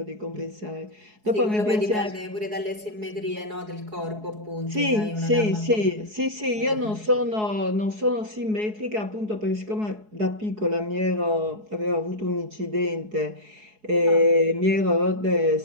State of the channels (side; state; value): left; late; 4.7 ms